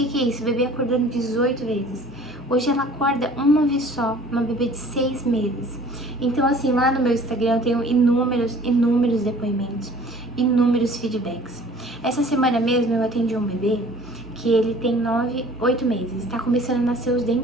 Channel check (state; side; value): normal; both; correlation 0.50